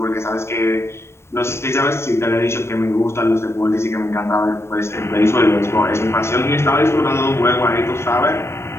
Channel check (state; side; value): late; right; 0.13 ms